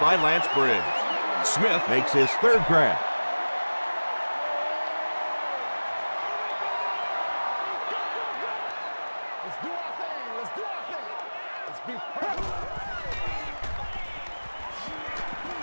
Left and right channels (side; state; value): both; inverted; correlation -1.00